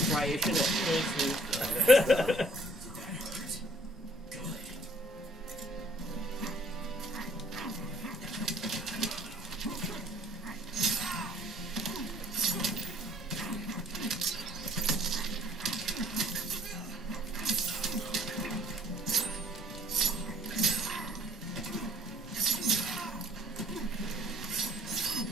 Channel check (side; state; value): both; normal; correlation 0.59